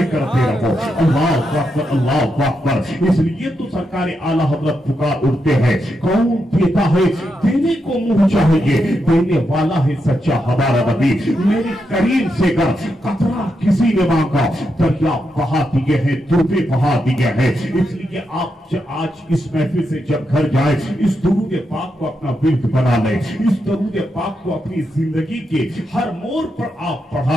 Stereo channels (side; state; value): both; normal; correlation 0.84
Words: करते रहो। अल्लाहु अकबर, अल्लाहु अकबर। इसलिए तो सरकार आला हज़रत पुकार उठते हैं, कौन देता है? देने को मुंह चाहिए, देने वाला है सच्चा हमारा नबी। मेरे करीम से गर कतरा किसी ने मांगा, दरिया बहा दिए हैं, दुर्बे बहा दिए हैं। इसलिए आप आज इस महफिल से जब घर जाए, इस दुरूद पाक को अपना विर्द बना ले, इस दुरूद पाक को अपनी जिंदगी के हर मोड़ पर आप